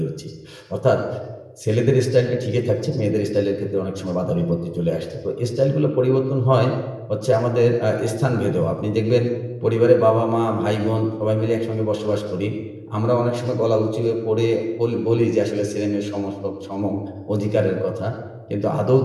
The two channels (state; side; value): identical; both; correlation 1.00